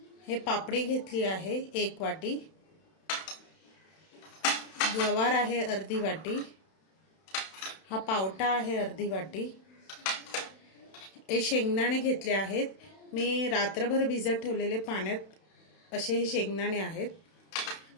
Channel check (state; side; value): late; right; 31 ms